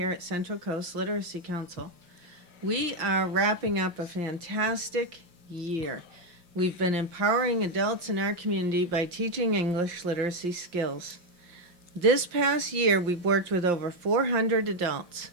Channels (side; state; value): left; late; 5.7 ms